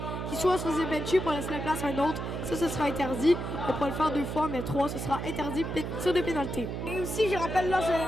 qui soit se faisaient bencher pour laisser la place à un autre. Ça, ce sera interdit. On pourra le faire 2 fois, mais 3, ce sera interdit, tir de pénalité. Et aussi, je rappelle, là,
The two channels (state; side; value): noise; right; hum, 4 dB below the sound